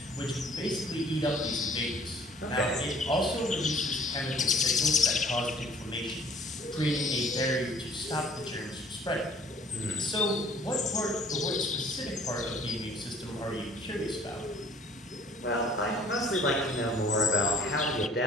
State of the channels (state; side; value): normal; both; correlation 0.55